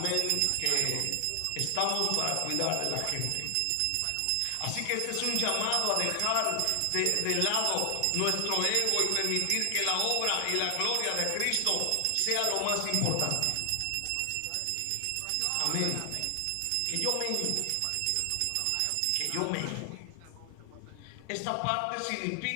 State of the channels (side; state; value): both; different; correlation 0.00